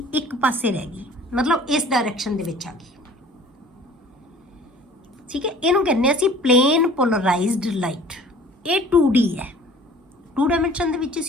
ਇੱਕ ਪਾਸੇ ਰਹਿ ਗਈ, ਮਤਲਬ ਇਸ ਡਾਇਰੈਕਸ਼ਨ ਦੇ ਵਿੱਚ ਆ ਗਈ। ਠੀਕ ਹੈ, ਇਹਨੂੰ ਕਹਿੰਦੇ ਅਸੀਂ ਪਲੇਨ ਪੋਲਰਾਈਜ਼ਡ ਲਾਈਟ। ਇਹ 2D ਹੈ, 2 ਡਾਇਮੈਂਸ਼ਨ ਦੇ ਵਿੱਚ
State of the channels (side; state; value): both; normal; correlation 0.48